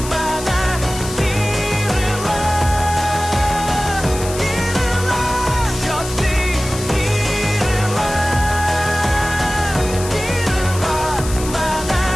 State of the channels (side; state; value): left; noise; hiss, 11 dB below the sound